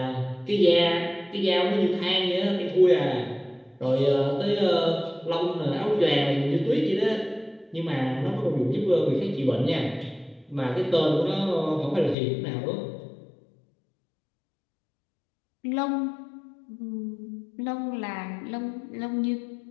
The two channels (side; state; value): right; drops out; at 12.2 s